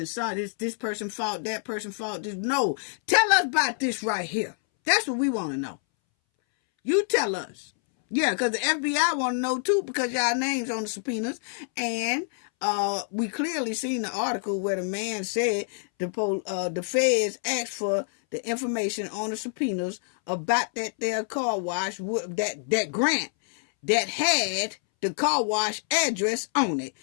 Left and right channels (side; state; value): right; silent; 60 dB below the other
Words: saw this person fault, that person fault. No, tell us about this right here. That's what we want to know. You tell us. Yeah, because the FBI want to know too, because y'all names on the subpoenas. And we clearly seen the article where the man said the feds asked for the information on the subpoenas about that their car wash, that grant that had the car wash address on it.